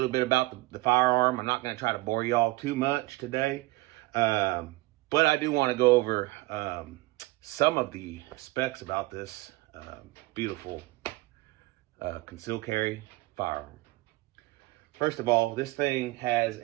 bit about the firearm. I'm not going to try to bore y'all too much today, but I do want to go over some of the specs about this beautiful concealed carry firearm. First of all, this thing has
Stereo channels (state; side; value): quieter; left; 20.8 dB